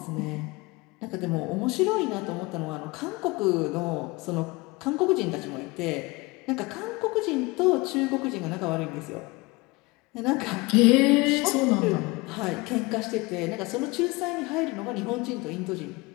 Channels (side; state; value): right; quieter; 23.9 dB